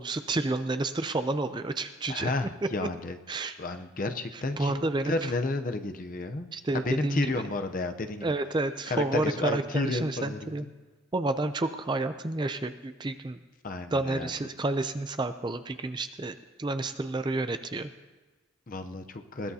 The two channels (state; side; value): normal; both; correlation 0.61